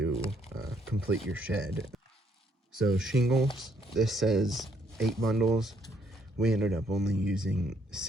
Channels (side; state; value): both; normal; correlation 0.69